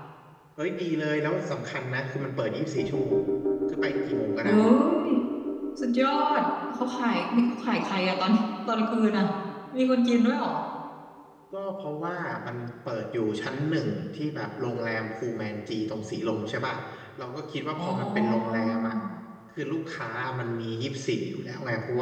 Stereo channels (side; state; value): both; identical; correlation 1.00